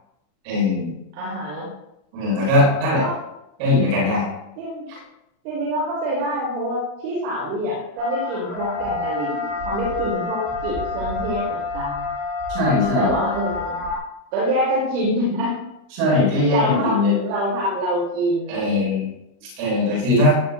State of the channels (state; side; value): late; left; 38 ms